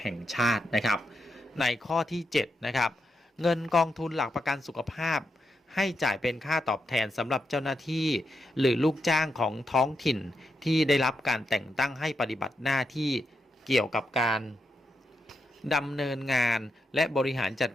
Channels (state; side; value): normal; both; correlation 0.84